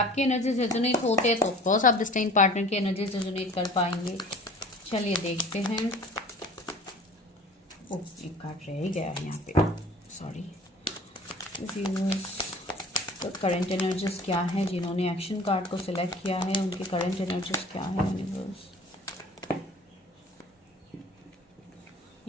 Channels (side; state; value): both; normal; correlation 0.45